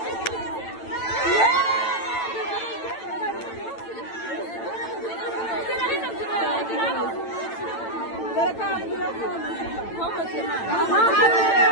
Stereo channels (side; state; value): right; late; 9.0 ms